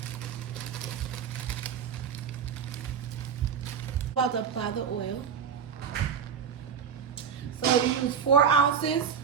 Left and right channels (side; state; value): left; quieter; 7.3 dB